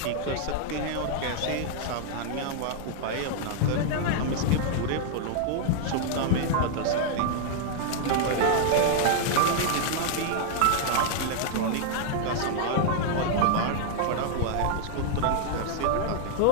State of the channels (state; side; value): different; both; correlation 0.00